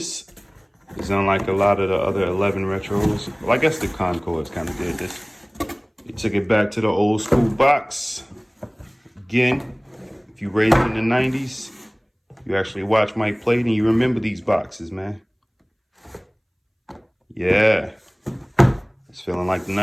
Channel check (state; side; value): identical; both; correlation 1.00